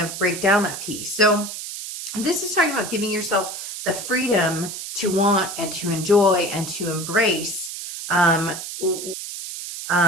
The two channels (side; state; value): right; noise; hiss, 8 dB below the sound